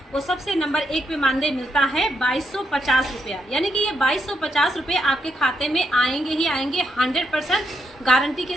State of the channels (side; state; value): both; normal; correlation 0.80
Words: वो सबसे नंबर 1 पे मानदेय मिलता है 2250 रुपया, यानी कि ये 2250 रुपये आपके खाते में आएंगे ही आएंगे। 100% गारंटी के